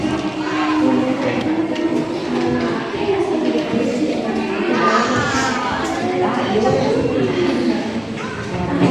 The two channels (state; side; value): noise; right; rumble, 27 dB below the sound